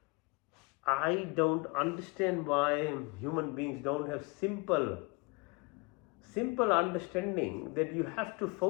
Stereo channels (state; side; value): quieter; right; 28.5 dB